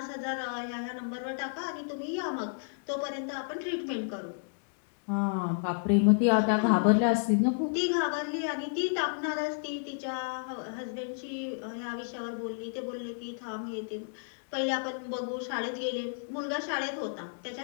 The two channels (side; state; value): right; silent; digital silence